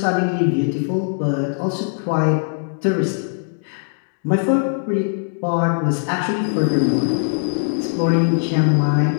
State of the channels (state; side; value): silent; right; digital silence